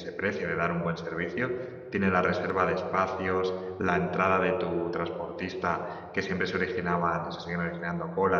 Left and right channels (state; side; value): identical; both; correlation 1.00